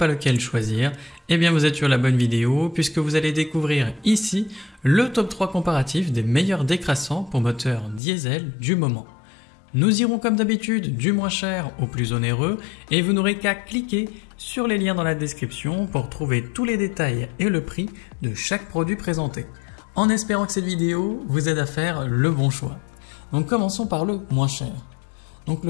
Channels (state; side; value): drops out; right; at 8.0 s